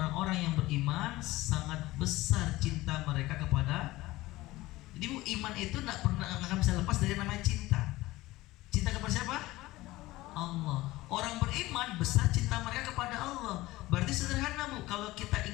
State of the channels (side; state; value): right; quieter; 18.6 dB